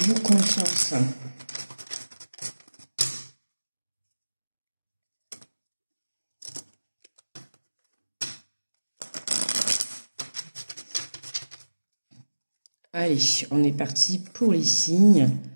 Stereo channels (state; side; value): inverted; both; correlation -1.00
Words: confiance. Allez, on est parti pour les signes.